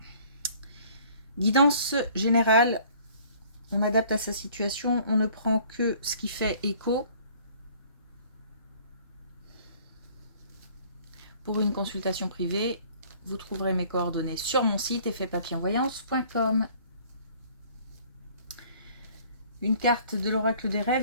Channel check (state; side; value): inverted; both; correlation -0.55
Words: Guidance générale. On adapte à sa situation. On ne prend que ce qui fait écho. Pour une consultation privée, vous trouverez mes coordonnées sur mon site effetpapillonvoyance.com. Une carte de l'oracle des